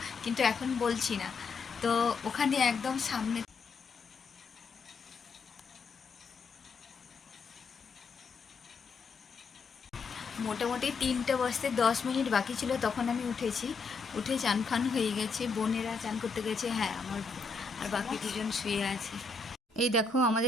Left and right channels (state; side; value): quieter; right; 4.5 dB